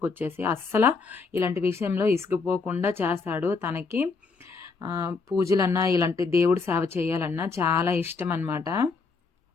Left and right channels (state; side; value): quieter; right; 4.5 dB